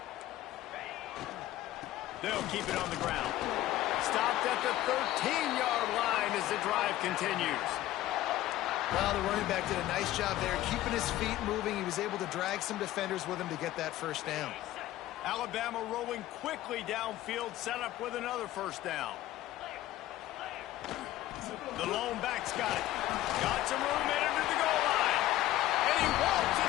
They'll keep it on the ground. Stopped at the 13-yard line as the drive continues. Well, the running back did a nice job there, keeping his feet moving. He was able to drag some defenders with him to get that first down. Alabama rolling quickly downfield, set up with another first down. The lone back's got it. Got some room in under the goal line. And he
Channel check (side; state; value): right; quieter; 14.8 dB